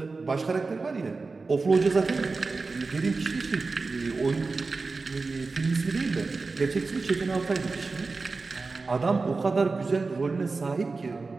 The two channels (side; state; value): left; quieter; 4.0 dB